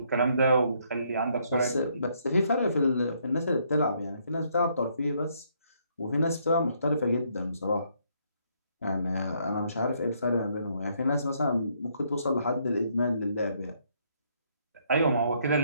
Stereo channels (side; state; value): both; inverted; correlation -0.71